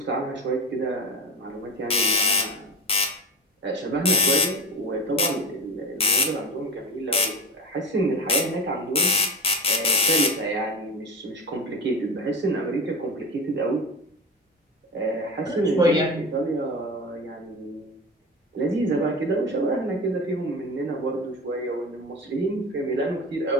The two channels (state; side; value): normal; both; correlation 0.25